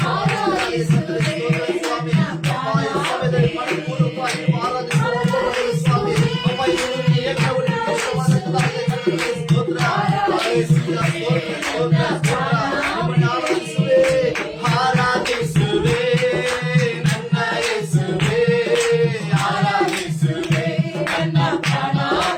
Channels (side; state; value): both; identical; correlation 1.00